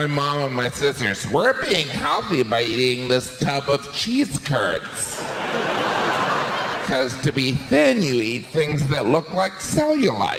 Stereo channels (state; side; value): identical; both; correlation 1.00